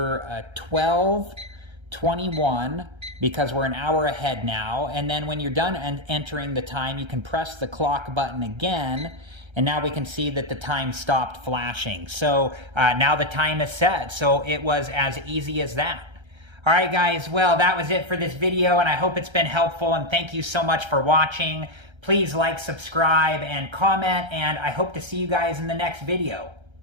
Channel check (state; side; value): late; left; 1.3 ms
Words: 12:21 because we're an hour ahead now, and then when you're done entering the time, you can press the clock button again, and now we can see that the time stopped flashing. So now the time is set, so it was as easy as that. All right, guys, well, that was it for this video, and I hope it's been helpful, and thank you so much for watching. Please like, subscribe, and comment, and I hope to see you guys in the next video.